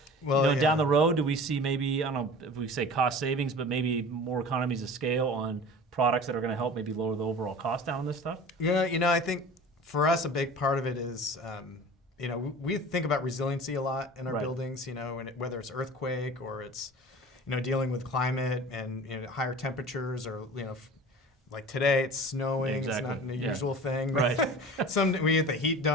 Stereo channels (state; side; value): normal; both; correlation 0.39